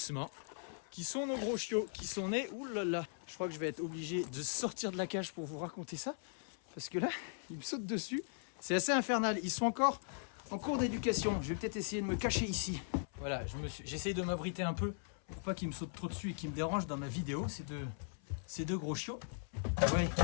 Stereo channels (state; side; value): silent; right; 52 dB below the other